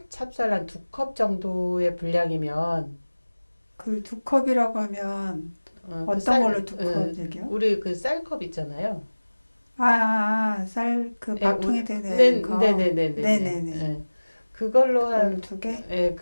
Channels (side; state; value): both; inverted; correlation -1.00